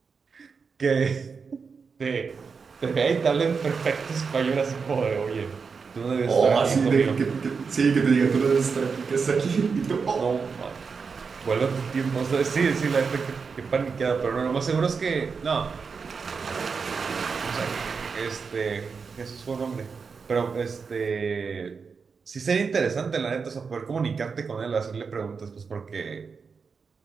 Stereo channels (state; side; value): quieter; left; 5.4 dB